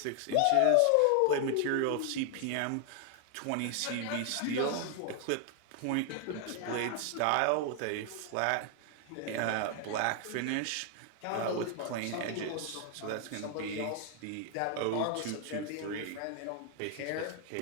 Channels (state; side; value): different; both; correlation 0.00